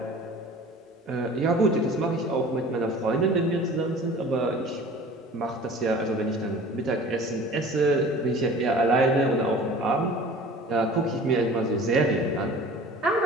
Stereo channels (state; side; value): normal; both; correlation 0.43